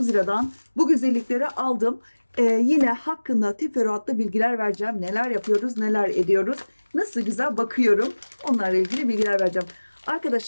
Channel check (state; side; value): inverted; both; correlation -1.00